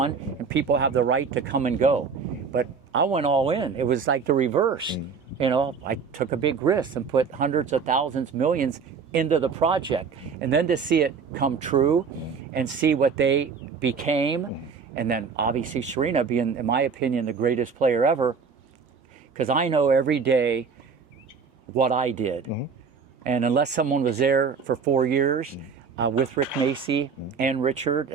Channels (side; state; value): left; quieter; 5.6 dB